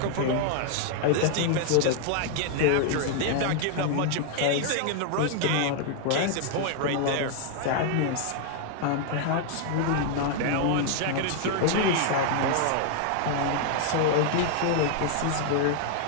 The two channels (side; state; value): both; different; correlation 0.00